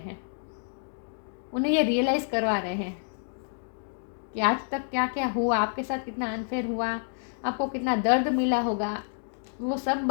उन्हें ये रियलाइज़ करवा रहे हैं कि आज तक क्या क्या हुआ, आपके साथ कितना अनफेयर हुआ, आपको कितना दर्द मिला होगा। वो सब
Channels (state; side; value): silent; right; digital silence